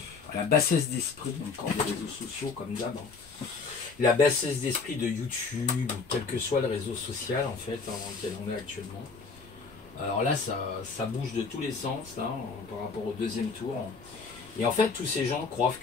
à la bassesse d'esprit encore des réseaux sociaux comme d'hab, hein. La bassesse d'esprit de YouTube, quel que soit le réseau social en fait, hein, dans lequel on est actuellement. Alors là, ça bouge de tous les sens là, par rapport au deuxième tour. Et en fait, tous ces gens croient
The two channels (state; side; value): quieter; right; 4.7 dB